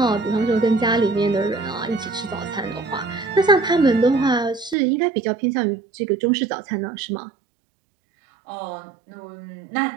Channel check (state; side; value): drops out; left; at 4.8 s